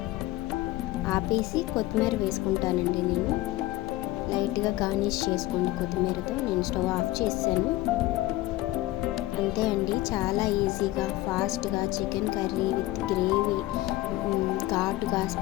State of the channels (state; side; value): quieter; right; 17.5 dB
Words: ఆపేసి కొత్తిమీర వేసుకుంటానండి. నేను లైట్గా గార్నిష్ చేసుకోండి కొత్తిమీరతో. నేను స్టవ్ ఆఫ్ చేశాను. అంతే అండి, చాలా ఈజీగా ఫాస్ట్గా చికెన్ కర్రీ విత్ గ్రేవీ ఘాటుగా